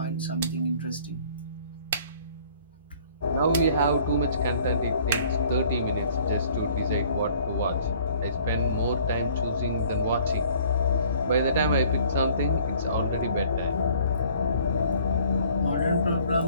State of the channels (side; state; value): both; inverted; correlation -0.55